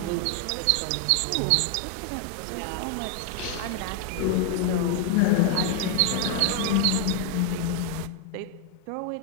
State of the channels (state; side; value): different; both; correlation 0.01